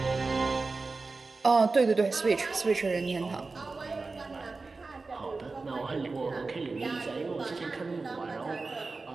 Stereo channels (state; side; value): quieter; left; 3.8 dB